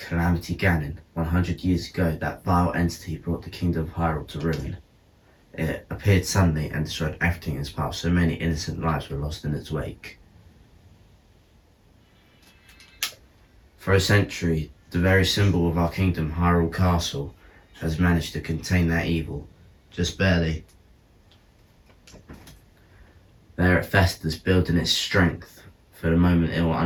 Calamity Ganon. 100 years ago, that vile entity brought the kingdom of Hyrule to ruin. It appeared suddenly and destroyed everything in its path, so many innocent lives were lost in its wake. For a century, the very symbol of our kingdom, Hyrule Castle, has managed to contain that evil. Just barely. There it festers, building its strength for the moment it will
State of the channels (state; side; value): identical; both; correlation 1.00